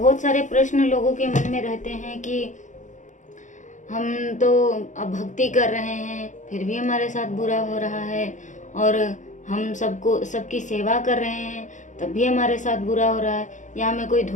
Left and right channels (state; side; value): late; right; 0.36 ms